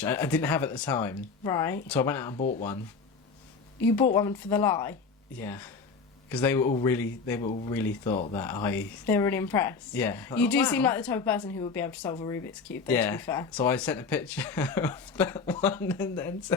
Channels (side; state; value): right; quieter; 4.9 dB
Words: I didn't have at the time, Right. so I went out and bought one. You bought one for the lie. Yeah, because they were all really thought that They were really impressed. yeah. You do wow. seem like the type of person who would be able to solve a Rubik's Cube, though, to be fair. So I sent a picture of that one and then